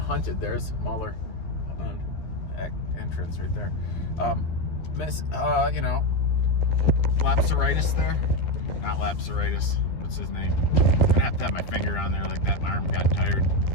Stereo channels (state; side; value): late; right; 12 ms